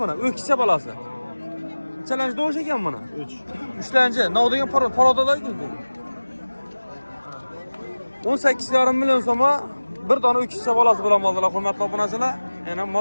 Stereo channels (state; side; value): inverted; both; correlation -1.00